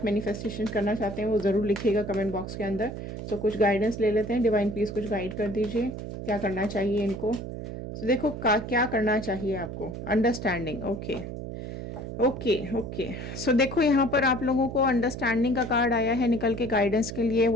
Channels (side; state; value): right; noise; hum, 7 dB below the sound